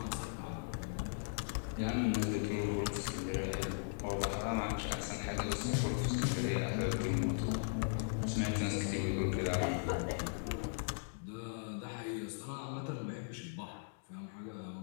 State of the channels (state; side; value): silent; right; digital silence